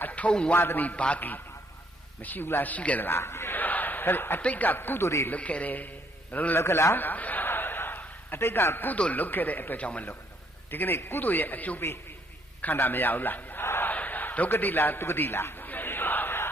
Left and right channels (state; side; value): normal; both; correlation 0.68